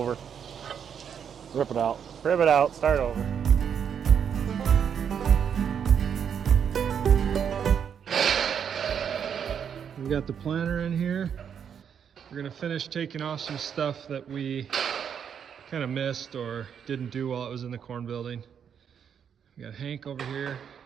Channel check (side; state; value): left; quieter; 7.8 dB